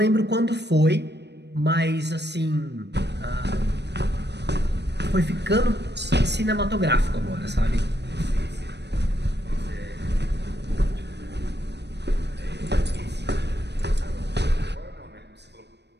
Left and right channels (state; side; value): late; left; 0.50 ms